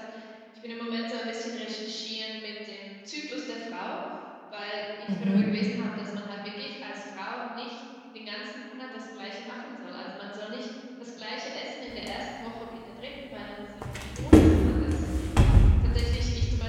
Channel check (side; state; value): both; identical; correlation 1.00